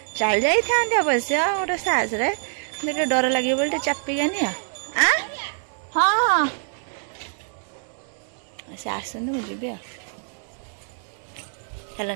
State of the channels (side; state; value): left; silent; 62 dB below the other